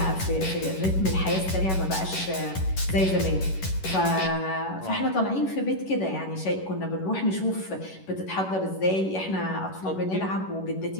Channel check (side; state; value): right; late; 11 ms